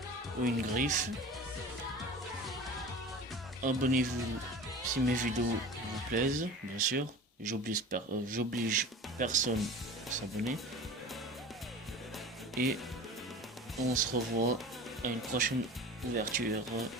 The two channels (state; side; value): normal; both; correlation 0.36